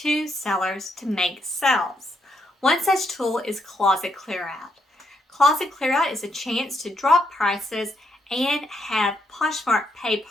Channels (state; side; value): normal; both; correlation 0.77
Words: sellers to make sales. One such tool is Closet Clearout. Closet Clearout is a chance to drop prices and have Poshmark pay